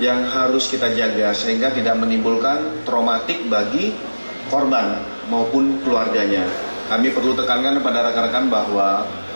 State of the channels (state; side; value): inverted; both; correlation -1.00